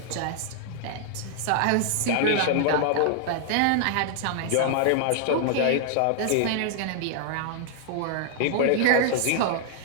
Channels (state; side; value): different; both; correlation -0.01